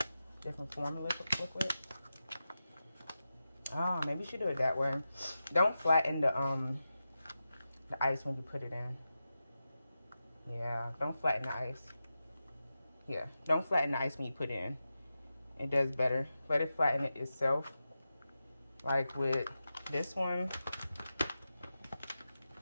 different form of liquid. Oh, maybe you should do it that way. Don't flatten the ice when you put it in. Yeah, don't flatten the ice. Yeah, don't flatten the ice when you put it in. It does better. Let it flatten it itself. Like with this one.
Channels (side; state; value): both; inverted; correlation -0.91